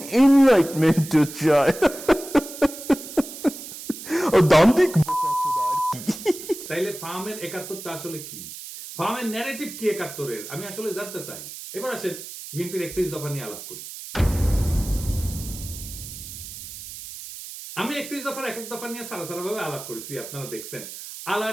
এনলাইটমেন্ট চাই। দান্তিক বোকাচোদা আর কি। তাইলে ফার্মের 71টা আসলে কি? ফার্মের ন্যারেটিভ কি 71-এর? আমি আসলে জানতে চাই। এবার আসেন বিএনপির 31 দফা নিয়ে আলাপ করি। আমি 31 দফার এক এক দফা নিয়ে সারা ভাবে আলাপ করেছি, আপনারা দেখছেন।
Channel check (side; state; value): right; noise; hiss, 12 dB below the sound